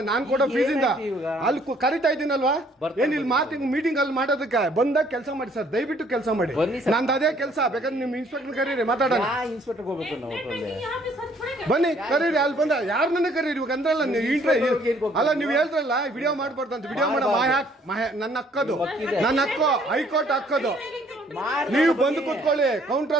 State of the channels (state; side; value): normal; both; correlation 0.62